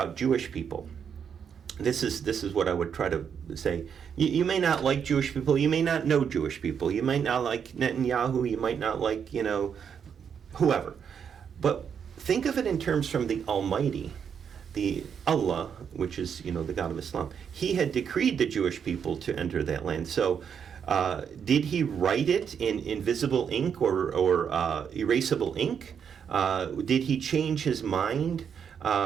Jewish people. This is what I would try to say. You may not like Jewish people. You may not know Jewish people. You might not like Netanyahu. You might not like, whoever. But think of it in terms from the Almighty, the Allah, which is, the God of Islam. He had decreed the Jewish people to enter that land. So did he write it in invisible ink or erasable ink? Did he change his mind?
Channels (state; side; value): quieter; left; 7.4 dB